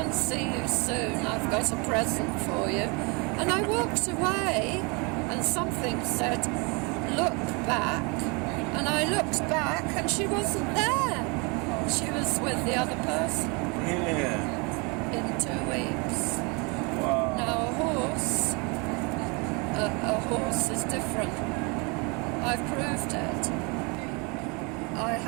and see you soon. I've got a present for you. And I walked away and something said, look back. And I looked back and she wasn't there. She was with the other person. Yeah. In 2 weeks. Wow. Now a horse is different. I've proved it. I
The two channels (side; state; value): left; quieter; 30.7 dB